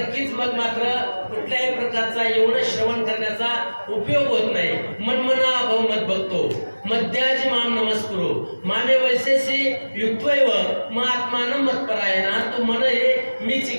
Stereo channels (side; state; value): both; inverted; correlation -1.00